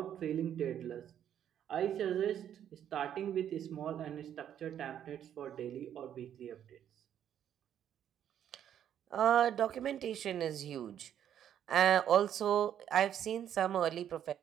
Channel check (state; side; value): quieter; left; 9.9 dB